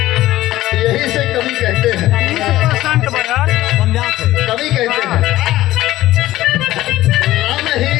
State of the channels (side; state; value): right; quieter; 15.7 dB